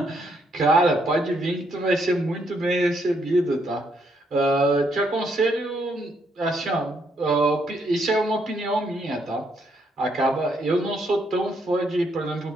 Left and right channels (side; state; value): both; normal; correlation 0.74